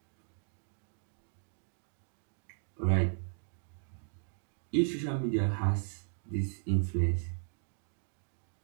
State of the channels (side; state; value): left; silent; digital silence